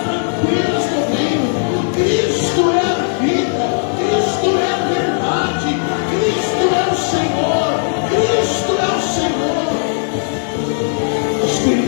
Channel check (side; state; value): right; silent; digital silence